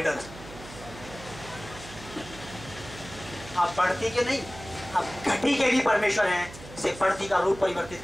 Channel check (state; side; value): noise; right; hum, 16 dB below the sound